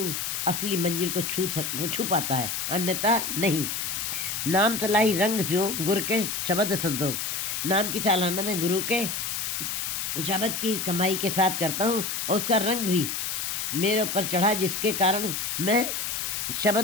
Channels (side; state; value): left; noise; hiss, 2 dB below the sound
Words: असली मंजिल को छू पाता है, अन्यथा नहीं। नाम तलाई रंग स्यो गुरु के शब्द संतोष। नाम की चालाना में गुरु के शब्द की कमाई के साथ करता हूँ, और उसका रंग भी मेरे ऊपर चढ़ा, जिसके कारण मैं